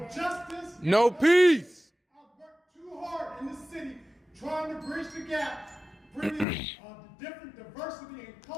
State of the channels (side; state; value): right; drops out; at 6.5 s